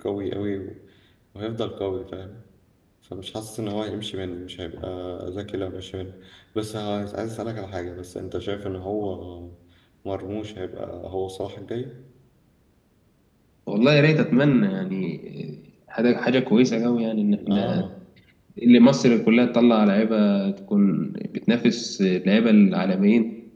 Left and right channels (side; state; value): both; identical; correlation 1.00